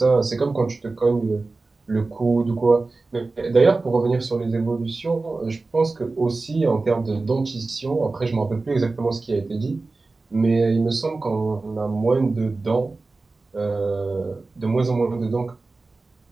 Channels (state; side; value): quieter; left; 3.6 dB